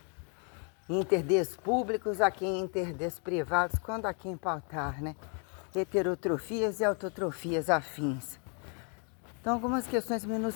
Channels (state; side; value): quieter; right; 39.5 dB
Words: interdes públicos a quem interdes privados, quando a quem pautar, né? Heterotrofias e autotrofias afins. Então, algumas questões